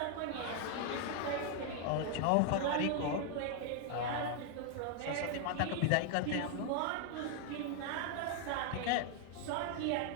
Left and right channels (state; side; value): different; both; correlation 0.00